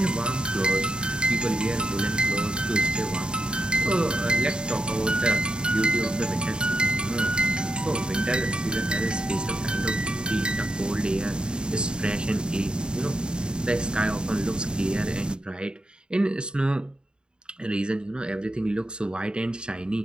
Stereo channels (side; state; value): left; late; 0.049 ms